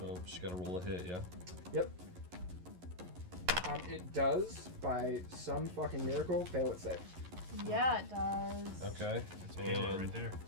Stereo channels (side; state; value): left; late; 11 ms